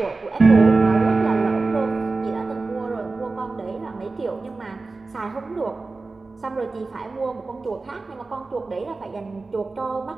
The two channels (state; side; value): quieter; left; 3.7 dB